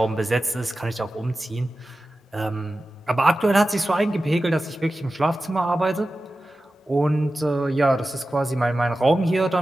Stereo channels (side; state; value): both; normal; correlation 0.94